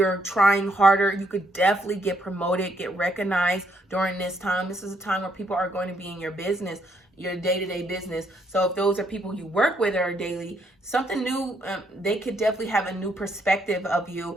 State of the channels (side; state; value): both; normal; correlation 0.72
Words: trying harder, you could definitely get promoted, get recognized during this time. This is a time where people are going to be in your business, your day-to-day business. So if those are people you work with or daily, something new, they could definitely have a new perspective of you,